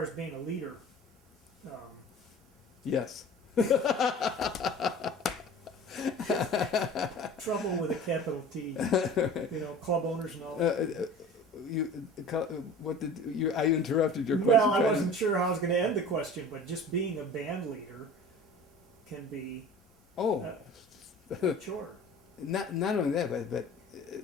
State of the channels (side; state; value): both; normal; correlation 0.42